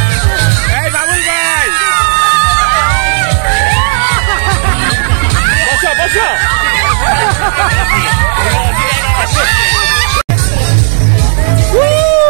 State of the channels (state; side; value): silent; left; digital silence